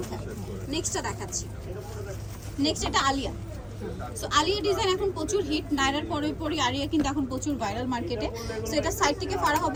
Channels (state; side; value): identical; both; correlation 1.00